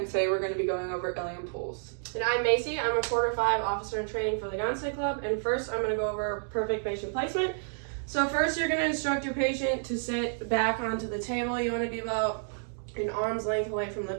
today we're going to be going over Ilium pulls. And I'm Macy. I'm a quarter 5 officer in training for the Gonstead Club. And first, I'm going to go over perfect patient placement. So first, you're going to instruct your patient to sit back onto the table. You want to be about an arm's length away from the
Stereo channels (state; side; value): silent; left; digital silence